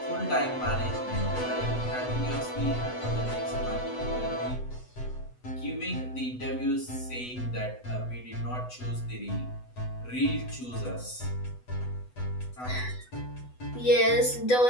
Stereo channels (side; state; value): right; late; 8.0 ms